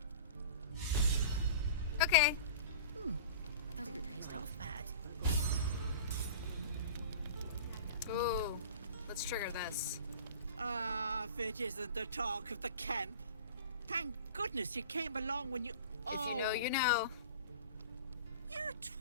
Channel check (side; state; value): both; inverted; correlation -0.38